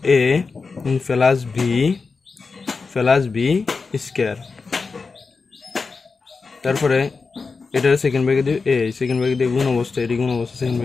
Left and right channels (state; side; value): quieter; right; 4.5 dB